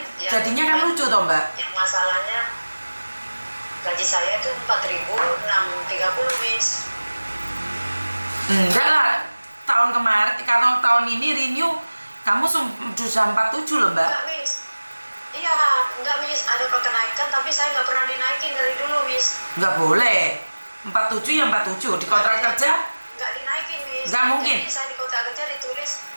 jadinya kan lucu toh Mbak. Yang masalahnya gaji saya itu 4.630 Miss. Enggak lah, tahun kemarin, kalau tahun ini renew kamu sudah 47 loh Mbak. Enggak Miss. Iya, enggak Miss, ada kenaikan tapi saya nggak pernah dinaikin dari dulu Miss. Nggak boleh. 47 ya 47 di kontrak kerja. Nggak dinaikin Miss. Nggak mungkin. Jadi saya di kontrak kerja ditulis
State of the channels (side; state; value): both; inverted; correlation -1.00